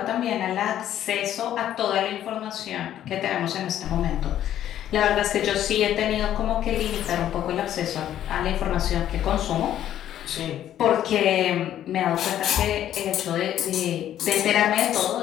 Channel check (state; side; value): quieter; right; 11.4 dB